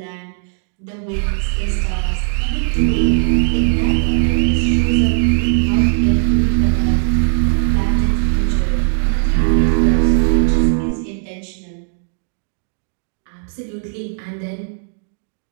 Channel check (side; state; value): left; silent; digital silence